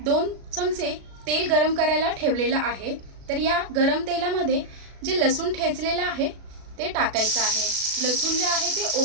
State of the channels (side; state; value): left; late; 37 ms